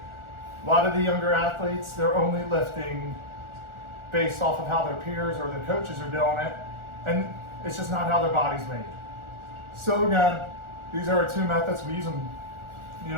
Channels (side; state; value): left; late; 1.4 ms